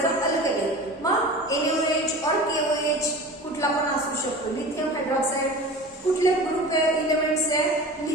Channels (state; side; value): normal; both; correlation 0.36